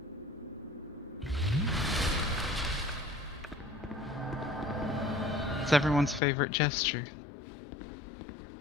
It's everyone's favorite gesture.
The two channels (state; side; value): drops out; right; at 6.2 s